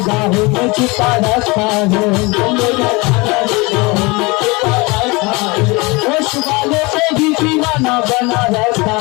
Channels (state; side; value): quieter; right; 25.5 dB